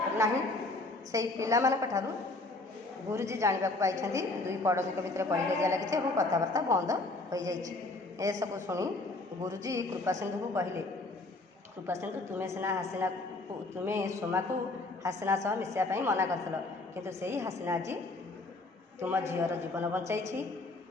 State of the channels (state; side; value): quieter; right; 3.1 dB